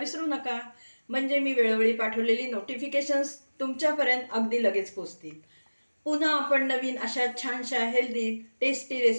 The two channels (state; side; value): inverted; both; correlation -1.00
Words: नका, म्हणजे मी वेळोवेळी पाठवलेली नोटिफिकेशन्स तुमच्यापर्यंत अगदी लगेच पोहोचतील. पुन्हा आपण नवीन अशा छानशा हेल्दी टेस्टी